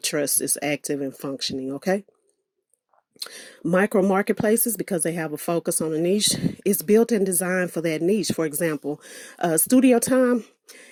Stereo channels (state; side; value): identical; both; correlation 1.00